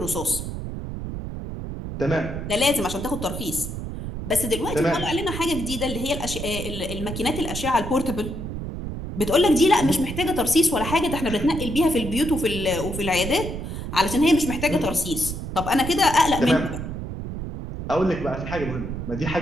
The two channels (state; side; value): noise; right; rumble, 6 dB below the sound